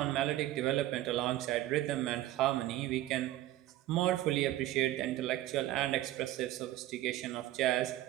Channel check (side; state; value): left; quieter; 14.8 dB